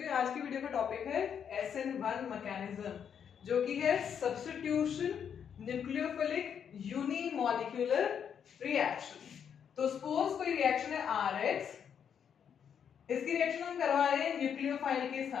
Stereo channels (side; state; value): right; quieter; 7.9 dB